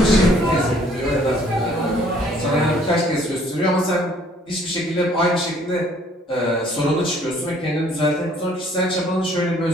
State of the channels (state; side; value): normal; both; correlation 0.59